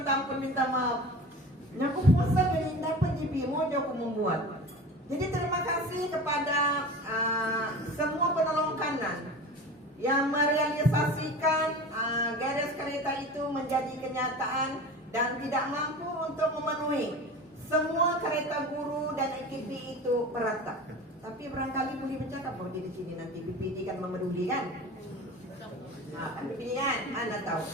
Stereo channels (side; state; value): both; normal; correlation 0.35